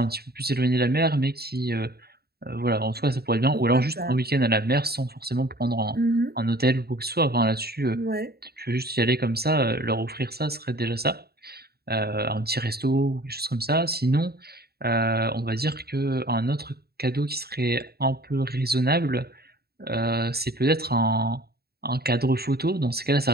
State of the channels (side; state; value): left; late; 0.46 ms